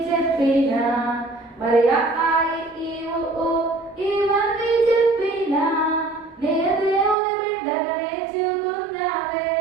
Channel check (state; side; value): drops out; left; at 7.2 s